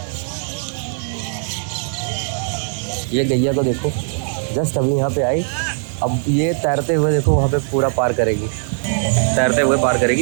ये गैया को देखो, जस्ट अभी यहाँ पे आई, अब ये तैरते हुए देखो वहाँ पे पूरा पार करेगी, तैरते हुए पार करेगी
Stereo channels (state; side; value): silent; left; 66 dB below the other